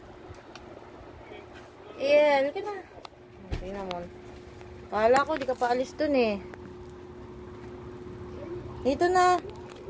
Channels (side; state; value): both; identical; correlation 1.00